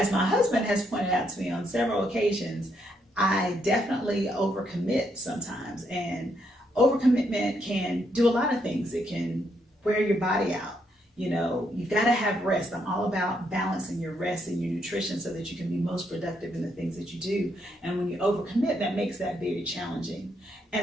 my husband has pointed out to me on several occasions, I definitely overcommit sometimes. And overcommitment can do a lot of things. It can wear your body out. You've got to have rest. I'm all about balancing your rest and your nutrition so that you can be most productive in the things that you do. And when you overcommit, that makes that very challenging.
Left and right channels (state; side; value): normal; both; correlation 0.76